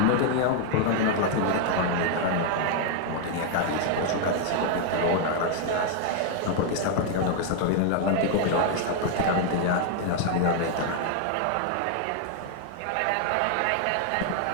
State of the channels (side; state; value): both; different; correlation 0.00